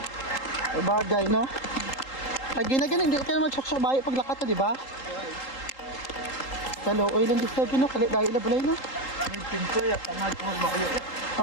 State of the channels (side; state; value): right; late; 3.8 ms